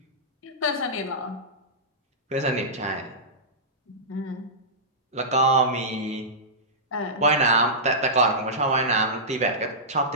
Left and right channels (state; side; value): normal; both; correlation -0.16